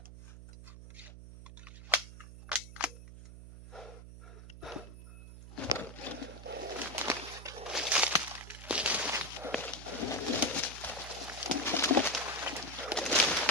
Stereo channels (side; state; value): right; noise; hum, 14 dB below the sound